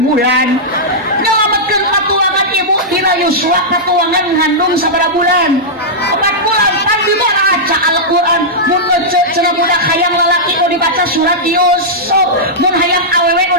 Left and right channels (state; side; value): normal; both; correlation -0.10